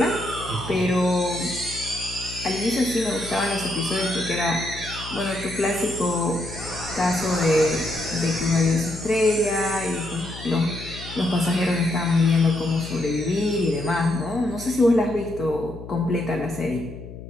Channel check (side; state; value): left; noise; hum, 13 dB below the sound